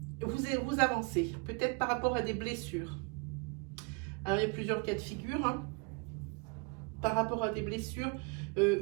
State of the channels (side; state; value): left; quieter; 32.1 dB